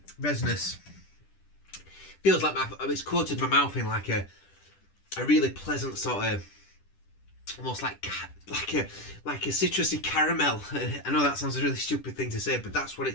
Resinous. Feels like it's coated my mouth in like a really pleasant sort of, almost like a citrusy caramel. I know that sounds a really stupid thing to say, but that's what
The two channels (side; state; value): right; late; 10 ms